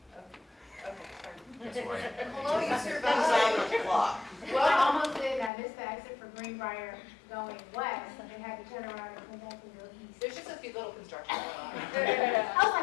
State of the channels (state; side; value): drops out; right; at 5.5 s